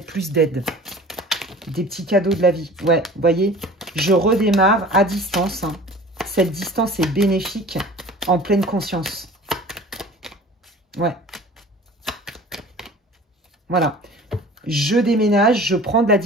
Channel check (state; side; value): normal; both; correlation 0.43